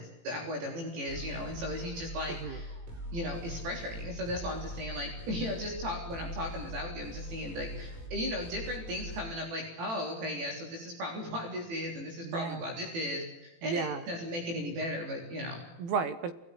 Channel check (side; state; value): left; late; 18 ms